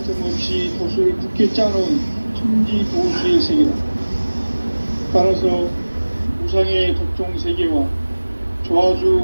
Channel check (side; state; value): both; inverted; correlation -1.00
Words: 틈 없이 도수를 굳게 짜놓은 천지 도수의 세계다. 따라서 우상의 도통 세계와